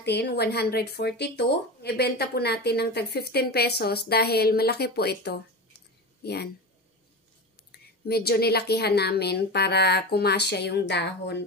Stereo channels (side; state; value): both; normal; correlation 0.25